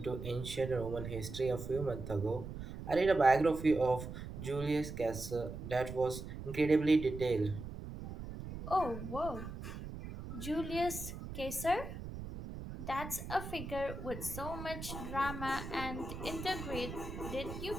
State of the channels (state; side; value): noise; right; rumble, 9 dB below the sound